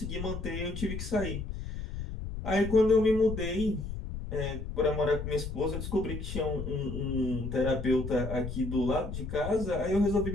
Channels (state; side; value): noise; left; rumble, 7 dB below the sound